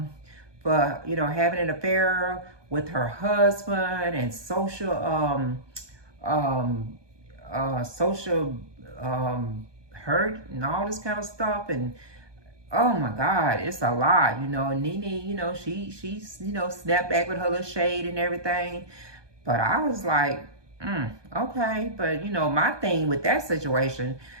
for, having an affair with her husband and social hurt and all this kind of stuff. And oh my God, it's a lot. Nene, she's snapped back with her little shade and everything. But I was like, okay. But my thing with that situation,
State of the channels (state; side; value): late; left; 1.2 ms